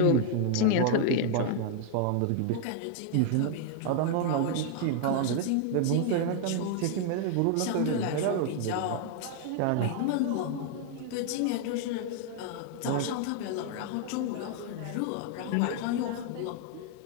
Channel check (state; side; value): different; both; correlation 0.00